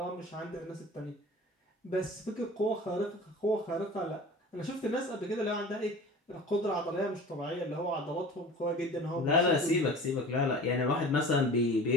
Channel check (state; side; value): normal; both; correlation 0.39